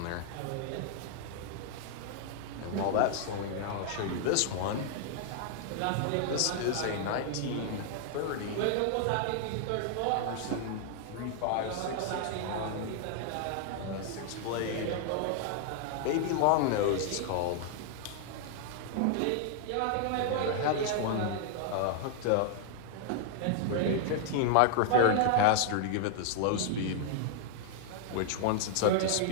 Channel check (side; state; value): both; different; correlation 0.00